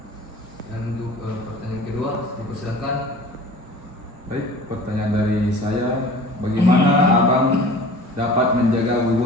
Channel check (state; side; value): normal; both; correlation 0.43